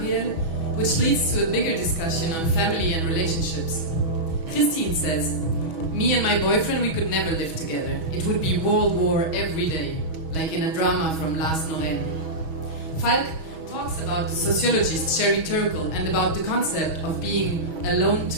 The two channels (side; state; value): left; late; 6.2 ms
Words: which leads to a bigger discussion on family and relationships. Christine says, me and my boyfriend, we could never live together. It would be World War every day, like in a drama from Lars Norén. Falk talks about the sociologist Sherry Turkle and about the concept of being alone